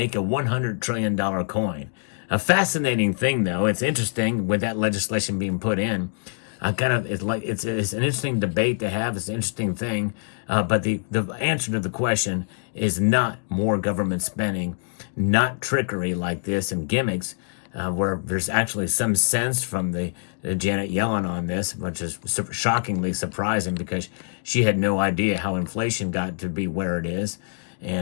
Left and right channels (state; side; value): silent; right; digital silence